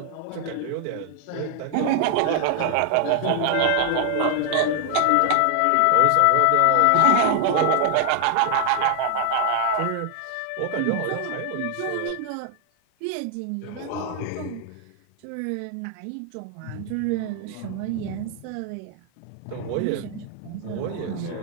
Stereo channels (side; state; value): both; different; correlation 0.00